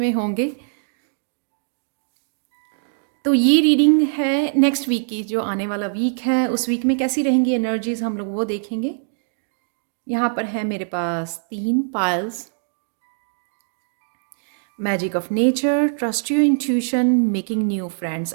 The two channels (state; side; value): silent; left; digital silence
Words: होंगे। तो ये रीडिंग है नेक्स्ट वीक की, जो आने वाला वीक है उस वीक में कैसी रहेंगी एनर्जीज हम लोग वो देखेंगे। यहाँ पर है मेरे पास 3 piles. Magic of nature, trust your intuition, making new friends.